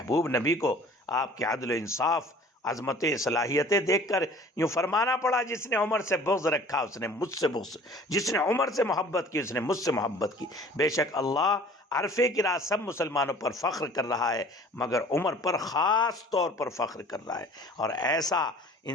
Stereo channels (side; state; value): both; normal; correlation 0.49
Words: نبی کو آپ کے عدل و انصاف، عظمتیں، صلاحیتیں دیکھ کر یوں فرمانا پڑا، جس نے عمر سے بغض رکھا اس نے مجھ سے بغض، جس نے عمر سے محبت کی اس نے مجھ سے محبت کی۔ بے شک اللہ عرفے کی رات سب مسلمانوں پر فخر کر رہا ہے، مگر عمر پر خاص طور پر فخر کر رہا ہے۔ اور ایسا